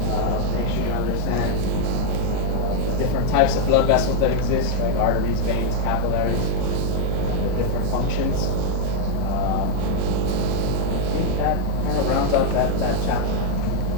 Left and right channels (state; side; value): different; both; correlation 0.00